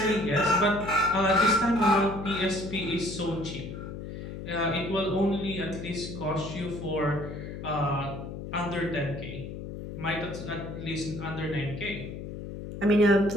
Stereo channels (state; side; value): noise; left; hum, 9 dB below the sound